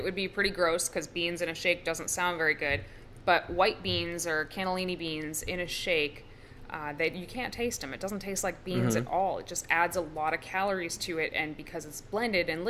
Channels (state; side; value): identical; both; correlation 1.00